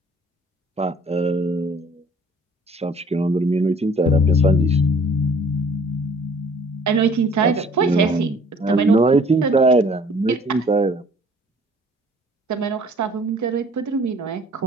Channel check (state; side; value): normal; both; correlation 0.54